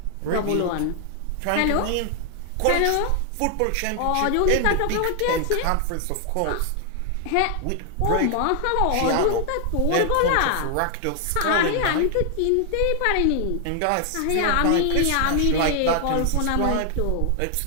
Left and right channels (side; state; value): both; different; correlation 0.00